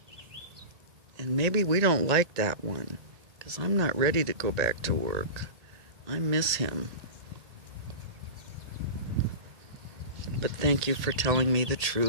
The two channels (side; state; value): left; late; 1.8 ms